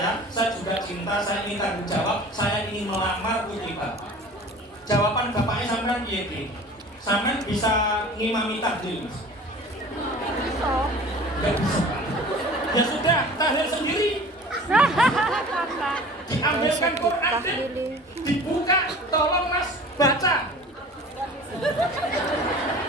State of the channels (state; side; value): normal; both; correlation 0.43